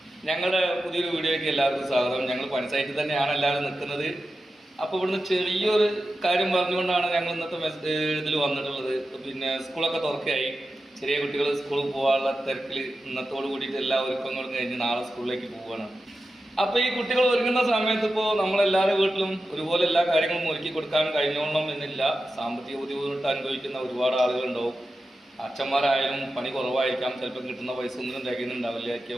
ഞങ്ങളുടെ പുതിയൊരു വീഡിയോയ്ക്ക് എല്ലാവർക്കും സ്വാഗതം. ഞങ്ങൾ പഞ്ചായത്തിൽ തന്നെയാണ് എല്ലാവരും നിൽക്കുന്നത്. അപ്പോൾ ഇവിടുന്ന് ചെറിയൊരു കാര്യം പറഞ്ഞുകൊണ്ടാണ് ഞങ്ങൾ ഇന്നത്തെ ഇതിൽ വന്നിട്ടുള്ളത്. പിന്നെ സ്കൂളൊക്കെ തുറക്കുകയായി. ചെറിയ കുട്ടികൾ സ്കൂളിൽ പോകാനുള്ള തിരക്കിൽ ഇന്നത്തോട് കൂടിയിട്ട് എല്ലാ ഒരുക്കങ്ങളും കഴിഞ്ഞ് നാളെ സ്കൂളിലേക്ക് പോവുകയാണ്. അപ്പോൾ ഈ കുട്ടികൾ ഒരുങ്ങുന്ന സമയത്ത് ഇപ്പോൾ നമ്മളെല്ലാവരുടെ വീട്ടിലും ഒരുപോലെ എല്ലാ കാര്യങ്ങളും ഒരുക്കി കൊടുക്കാൻ കഴിഞ്ഞോളണം എന്നില്ല. സാമ്പത്തിക ബുദ്ധിമുട്ട് അനുഭവിക്കുന്ന ഒരുപാട് ആളുകളുണ്ടാവും. അച്ഛന്മാരായാലും പണി കുറവായിരിക്കാം, ചിലപ്പോൾ കിട്ടുന്ന പൈസ ഒന്നും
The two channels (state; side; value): normal; both; correlation 0.92